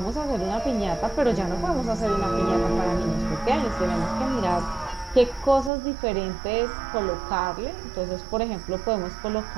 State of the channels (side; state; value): left; drops out; at 5.7 s